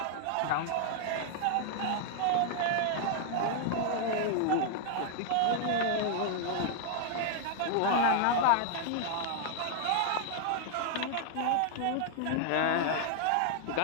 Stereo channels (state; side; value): different; both; correlation 0.00